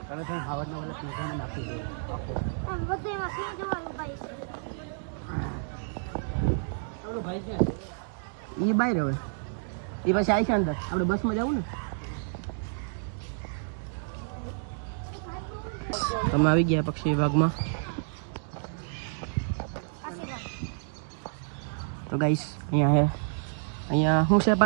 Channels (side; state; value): left; silent; digital silence